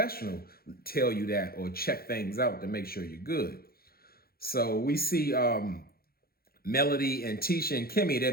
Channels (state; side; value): late; right; 0.44 ms